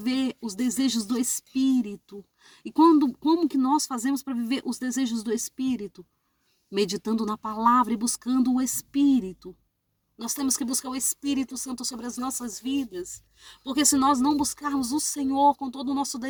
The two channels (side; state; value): both; identical; correlation 1.00